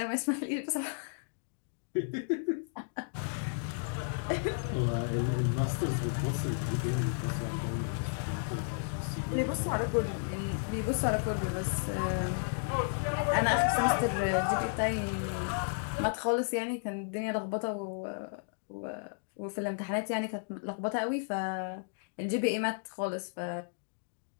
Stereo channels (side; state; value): right; silent; digital silence